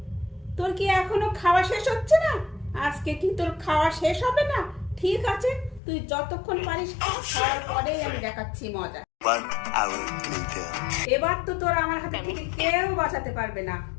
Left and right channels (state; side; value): drops out; right; at 5.8 s